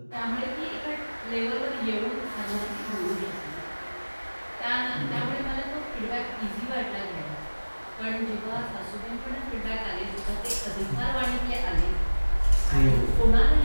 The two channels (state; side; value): inverted; both; correlation -1.00